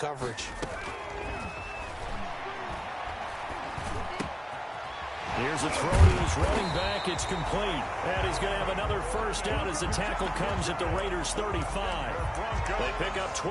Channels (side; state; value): both; identical; correlation 1.00